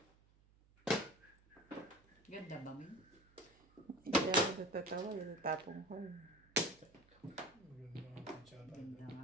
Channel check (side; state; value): right; noise; hum, 29 dB below the sound